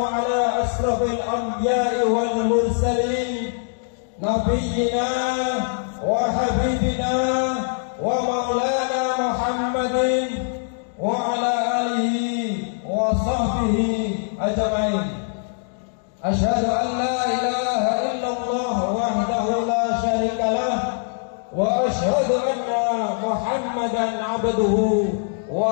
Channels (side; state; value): right; silent; digital silence